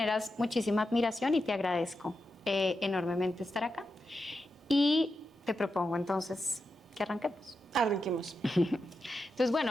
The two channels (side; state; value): both; normal; correlation 0.88